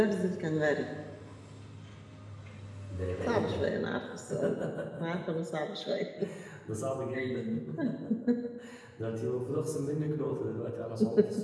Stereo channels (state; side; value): identical; both; correlation 1.00